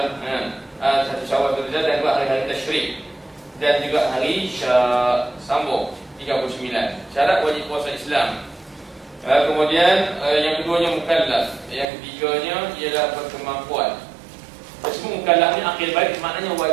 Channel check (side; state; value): left; drops out; at 11.9 s